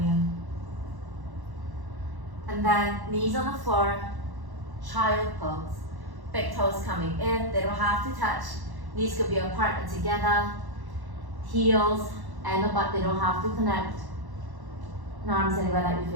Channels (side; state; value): left; late; 1.1 ms